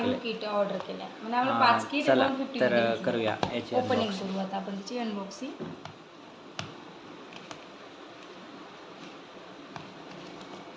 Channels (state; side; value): identical; both; correlation 1.00